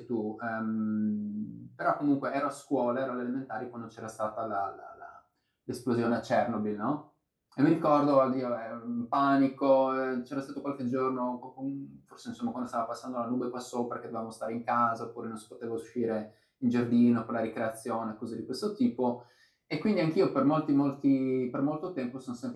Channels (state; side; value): identical; both; correlation 1.00